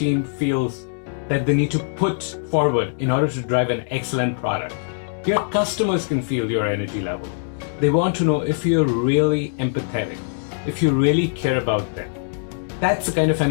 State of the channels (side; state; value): right; silent; digital silence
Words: feels that they need to put forward in order to drive an excellent product. Your customers can feel your energy level. They want to know if you're really empathetic, if you really care about them. That's the kind of